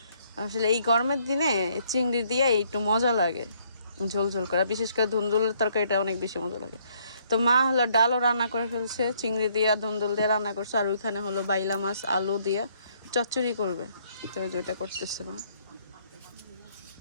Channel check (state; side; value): inverted; both; correlation -0.67